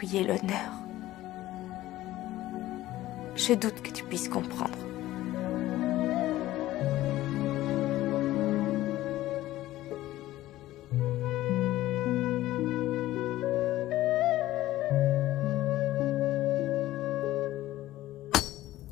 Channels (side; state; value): right; quieter; 15.6 dB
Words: l'honneur. Je doute que tu puisses comprendre.